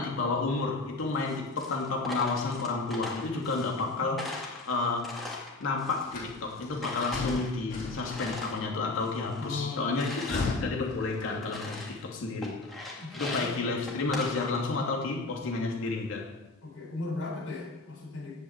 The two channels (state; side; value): quieter; right; 3.2 dB